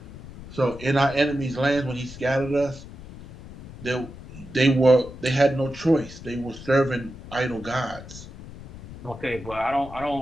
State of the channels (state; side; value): noise; left; rumble, 15 dB below the sound